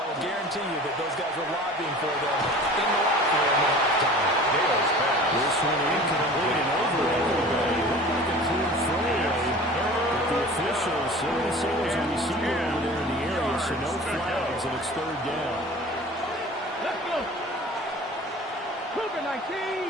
will guarantee you that those guys are lobbying for them in the locker room at halftime. Dale's pass. This one incomplete and over everybody. Looked like a clear throwaway. But the officials say there's a receiver over there in the area, so no flags, and it's third down. Let's go. Cougar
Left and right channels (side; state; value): both; normal; correlation 0.41